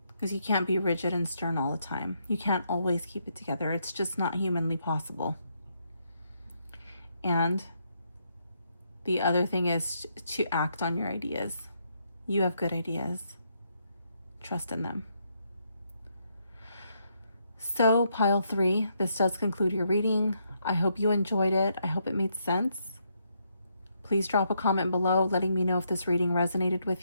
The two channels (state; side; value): inverted; both; correlation -0.77